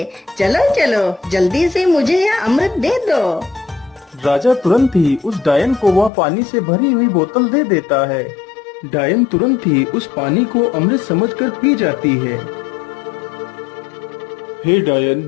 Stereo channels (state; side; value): drops out; right; at 6.1 s